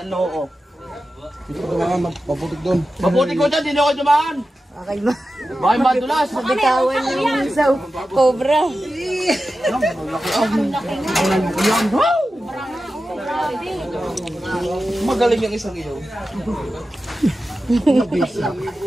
Dito ko naman maputik doon. Mabuti ko dyan, hindi ako dumaan. Okay ba? Bakit madulas? Bitawan yung sa cobra. Magaling yung isang iyo.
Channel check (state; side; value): normal; both; correlation 0.92